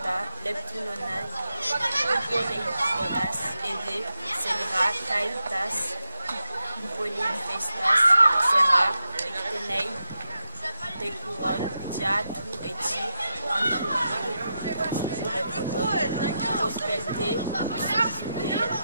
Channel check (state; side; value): inverted; both; correlation -0.87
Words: Leptunonai, Upoleiponas, Ede, Selra, Kaitas, Upoleifestas, Sera, Rectenei, Decuron, Diatu, Eti, Anthropino, Purepoton, Prospelte, Suzude,